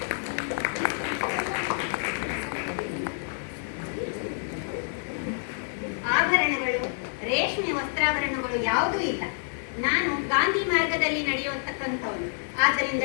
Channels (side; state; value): right; silent; 59 dB below the other